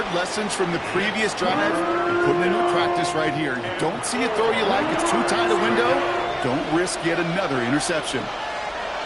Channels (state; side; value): identical; both; correlation 1.00